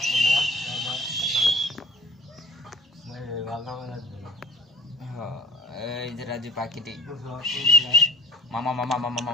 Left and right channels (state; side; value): normal; both; correlation 0.46